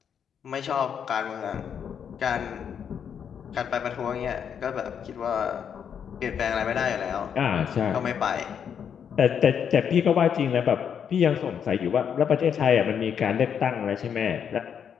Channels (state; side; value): quieter; right; 7.8 dB